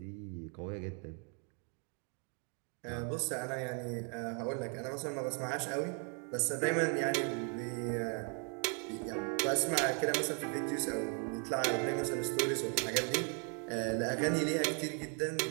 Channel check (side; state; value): left; quieter; 39.1 dB